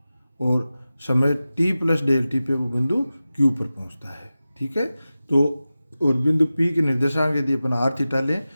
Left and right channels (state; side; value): inverted; both; correlation -0.95